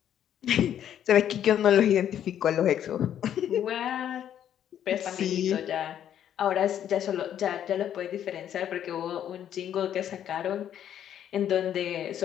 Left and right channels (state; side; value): quieter; right; 10.2 dB